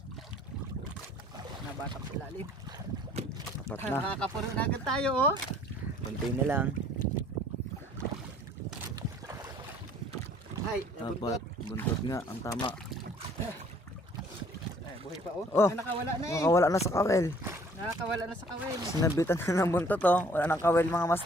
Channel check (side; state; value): both; normal; correlation 0.57